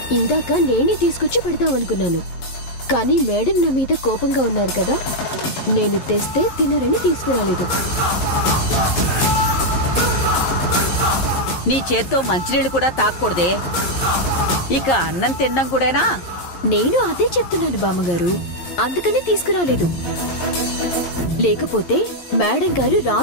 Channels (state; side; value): late; right; 11 ms